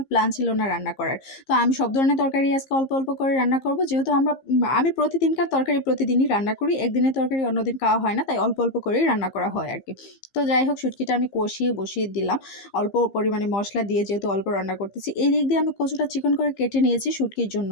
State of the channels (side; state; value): right; late; 15 ms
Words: প্ল্যান ছিল না রান্না করার। তো আমি সব ধরনের তরকারি আজকে অল্প, অল্প করে রান্না করব। যেহেতু আমি প্রতিদিনকার তরকারি প্রতিদিনই রান্না করি। একদিনের তরকারি অন্যদিন খাওয়া হয় না। তাই অল্প, অল্প করেই রান্না করা হয় আরকি। তো যাই হোক, শুটকিটা আমি কষিয়ে বসিয়ে দিলাম। অল্প পরিমাণে মসলা দিয়ে, যেহেতু অল্প রান্না করতেছি। এই দিক দিয়ে আমি কচুটা চিকন করে কেটে নিয়েছি শুটকির জন্য